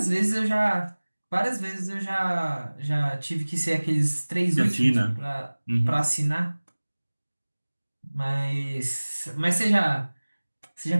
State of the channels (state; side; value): inverted; both; correlation -1.00